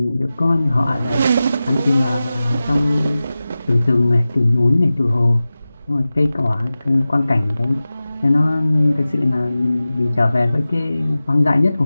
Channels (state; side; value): inverted; both; correlation -0.96